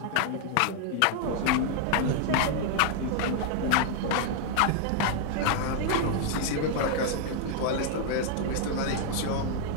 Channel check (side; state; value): both; different; correlation 0.00